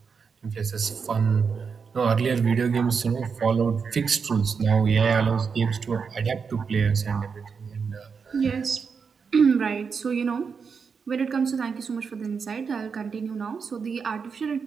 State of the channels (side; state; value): left; quieter; 5.8 dB